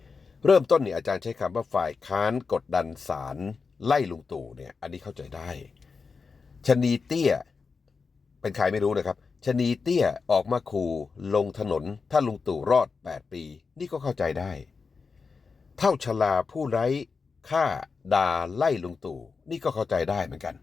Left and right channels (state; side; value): quieter; right; 4.9 dB